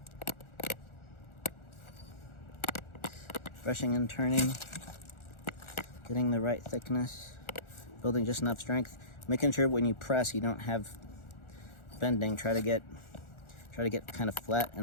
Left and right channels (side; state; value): right; late; 1.4 ms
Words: Brushing and turning, getting the right thickness, building just enough strength, making sure when you press you don't have bending. Try to get kind of flat